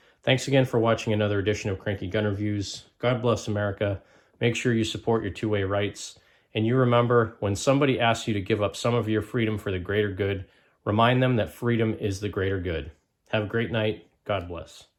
Thanks again for watching another edition of Cranky Gun Reviews. God bless America. Make sure you support your two-way rights. And you remember, when somebody asks you to give up some of your freedom for the greater good, remind them that freedom is the greater good. Have a great night. God bless.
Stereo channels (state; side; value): identical; both; correlation 1.00